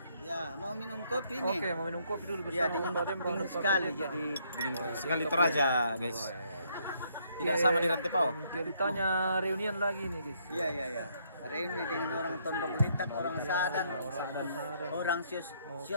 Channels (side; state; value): both; inverted; correlation -0.70